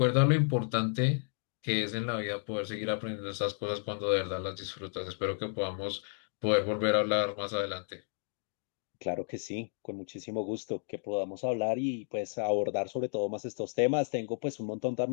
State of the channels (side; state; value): right; silent; 56 dB below the other